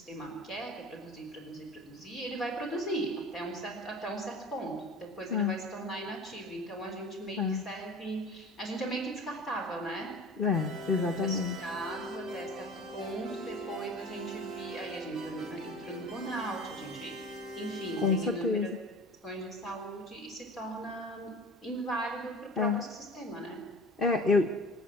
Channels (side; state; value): both; normal; correlation 0.40